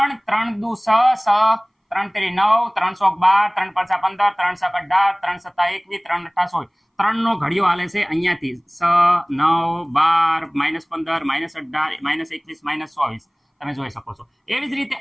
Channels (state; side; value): identical; both; correlation 1.00